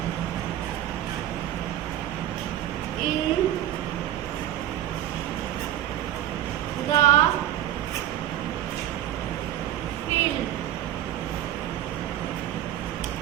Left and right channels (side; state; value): left; quieter; 12.0 dB